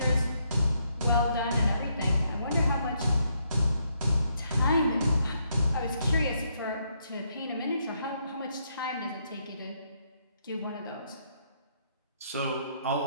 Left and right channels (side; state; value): both; inverted; correlation -0.75